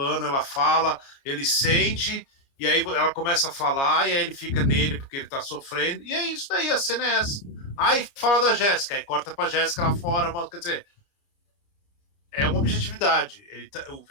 ela fala, ele sente, e aí ela começa a falar, e aí ele fica nele porque ele tá sofrendo, e é isso daí, a cena é essa. Aí fala da Jéssica, aí corta pra Jéssica lá fora, quer dizer, é uma objetividade. O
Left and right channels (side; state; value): right; late; 29 ms